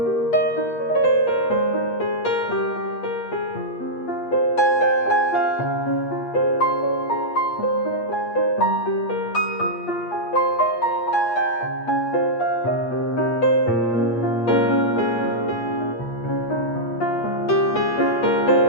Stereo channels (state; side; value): late; right; 8.4 ms